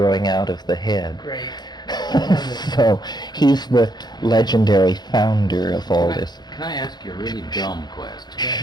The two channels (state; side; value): late; right; 0.20 ms